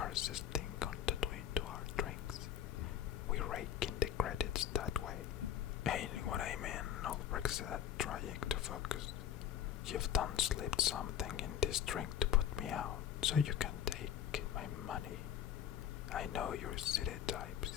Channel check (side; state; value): right; quieter; 9.7 dB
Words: thing on the Twin to our drinks. We rake in the credits that way. Ain't what I mean, Ulbricht said, trying to focus. You've done slipped something in this drink to put me out, so you can take my money. I know your city types.